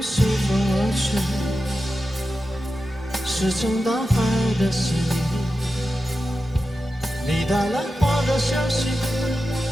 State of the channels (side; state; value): both; normal; correlation 0.91